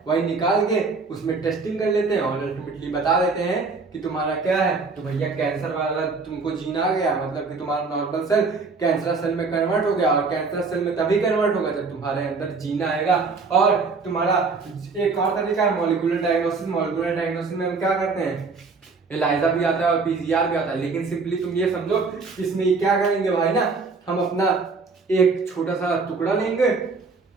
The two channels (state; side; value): quieter; left; 4.4 dB